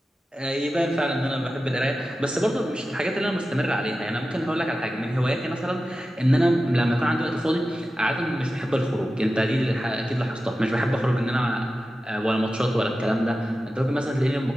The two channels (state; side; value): normal; both; correlation 0.93